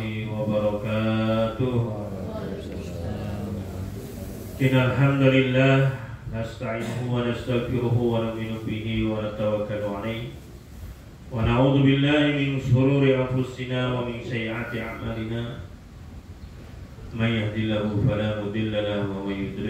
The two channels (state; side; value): identical; both; correlation 1.00